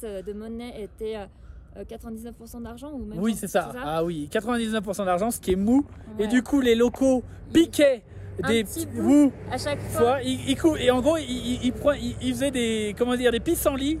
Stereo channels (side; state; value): both; identical; correlation 1.00